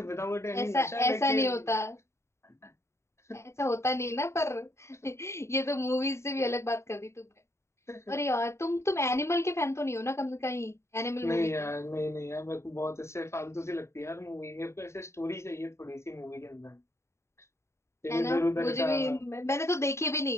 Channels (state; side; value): late; right; 0.13 ms